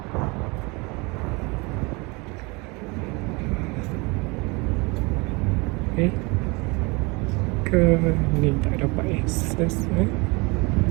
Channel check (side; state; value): left; quieter; 27.2 dB